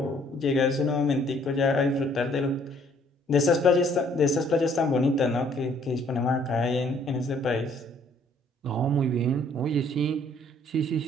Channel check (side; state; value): both; normal; correlation 0.62